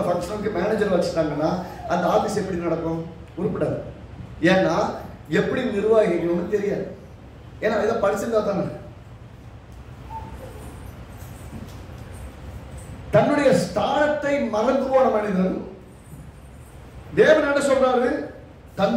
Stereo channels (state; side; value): identical; both; correlation 1.00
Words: மேனேஜர் வச்சுட்டாங்கன்னா அந்த ஆபீஸ் எப்படி நடக்கும்? உருப்படாது. ஏன்னா எப்படி நிர்வாகிக்கணும்னு தெரியாது. ஏன்னா இதை படிச்சிருந்தா தானே. தன்னுடைய ஸ்தானத்தை மறந்து போன மனிதன் தேவன் என்ன சொல்றாரு?